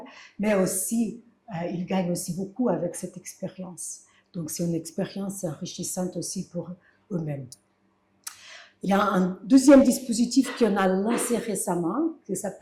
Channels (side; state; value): both; identical; correlation 1.00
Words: mais aussi ils gagnent aussi beaucoup avec cette expérience. Donc c'est une expérience enrichissante aussi pour eux-mêmes. Il y a un deuxième dispositif qu'on a lancé récemment, qui